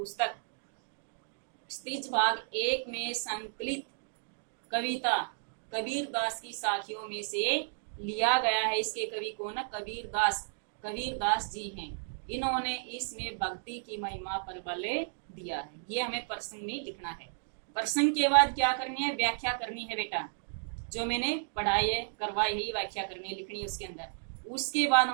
स्त्रीज भाग 1 में संकलित कविता कबीर दास की साखियों में से लिया गया है। इसके कवि कौन है? कबीर दास जी हैं। इन्होंने इसमें भक्ति की महिमा पर बल दिया है। ये हमें प्रसंग में लिखना है। प्रसंग के बाद क्या करनी है? व्याख्या करनी है बेटा। जो मैंने पढ़ाई है, करवाई है, व्याख्या करनी है, लिखनी है उसके अंदर। उसके बाद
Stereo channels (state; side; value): silent; left; digital silence